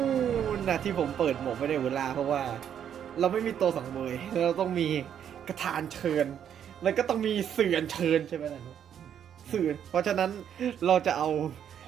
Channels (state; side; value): quieter; left; 9.1 dB